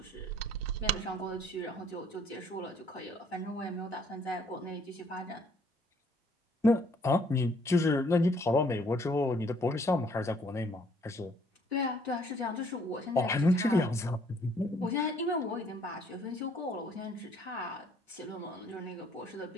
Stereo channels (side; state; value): both; normal; correlation 0.63